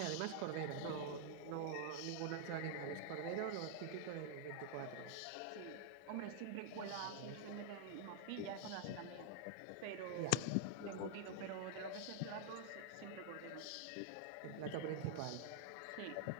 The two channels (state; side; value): different; both; correlation -0.01